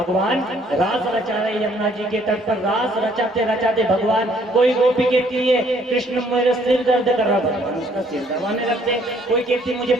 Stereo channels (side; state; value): both; normal; correlation 0.63